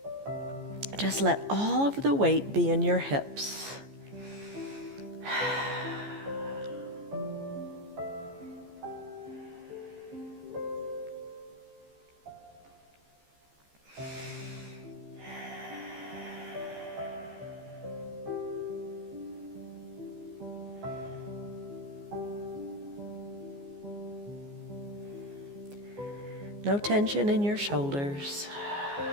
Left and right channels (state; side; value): late; left; 14 ms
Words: Just let all of the weight be in your hips. No tension in your shoulders.